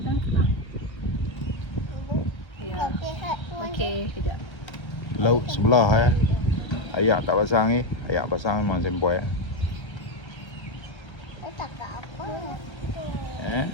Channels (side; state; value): right; late; 1.3 ms